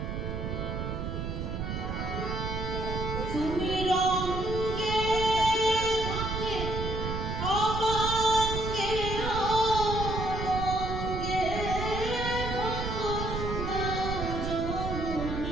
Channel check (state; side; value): noise; right; rumble, 4 dB below the sound